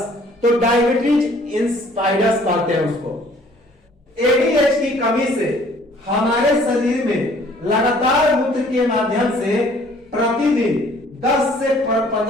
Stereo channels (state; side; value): normal; both; correlation 0.57